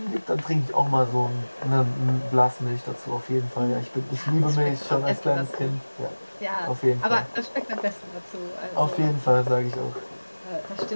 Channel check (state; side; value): inverted; both; correlation -1.00